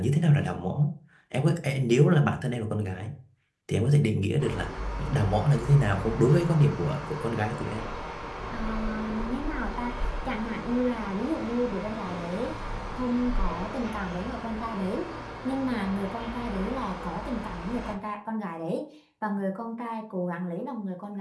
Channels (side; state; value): both; identical; correlation 1.00